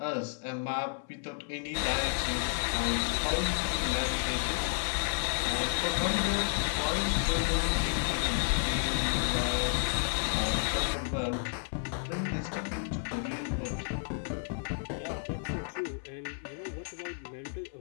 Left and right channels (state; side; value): silent; right; 57 dB below the other